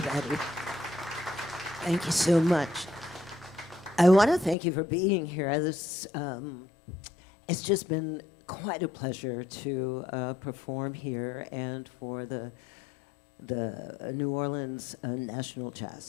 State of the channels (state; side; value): drops out; right; at 4.5 s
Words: Thank you so much. I want to thank you for being here. It's just been quite a pleasure to perform here and for the New Orleans National